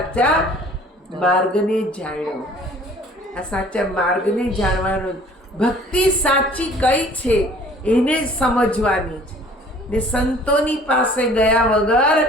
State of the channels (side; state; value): both; normal; correlation 0.52